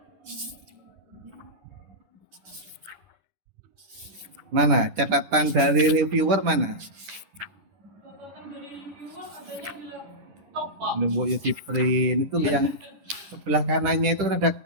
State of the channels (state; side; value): late; left; 10 ms